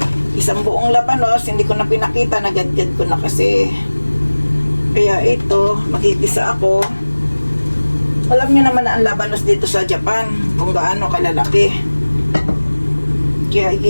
Isang buong labanos, hindi ko na pinakita, nagadgad ko na kasi. Kaya ito, magigisa ako. Alam niyo naman na ang labanos dito sa Japan, kung gaano kalalaki. Kaya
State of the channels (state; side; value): inverted; both; correlation -1.00